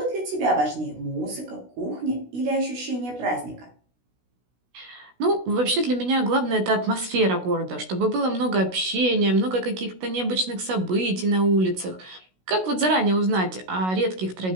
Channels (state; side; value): late; left; 16 ms